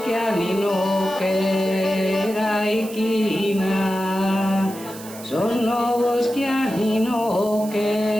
che erai china, sono boschianino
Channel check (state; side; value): noise; right; hiss, 16 dB below the sound